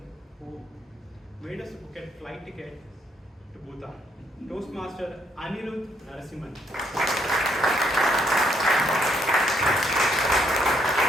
who made us book a flight ticket to Bhutan, Toastmaster Anirudh Narasimhan.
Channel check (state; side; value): normal; both; correlation 0.72